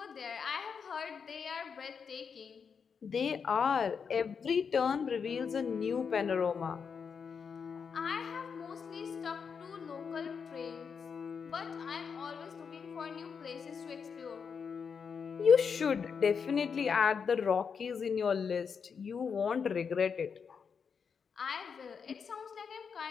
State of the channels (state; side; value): quieter; right; 6.2 dB